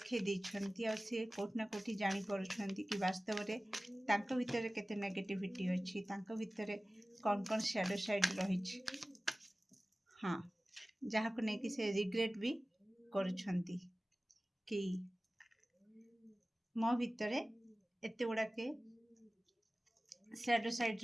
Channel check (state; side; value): normal; both; correlation 0.97